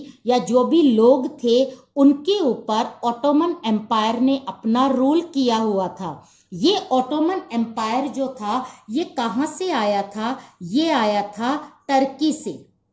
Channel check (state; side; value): identical; both; correlation 1.00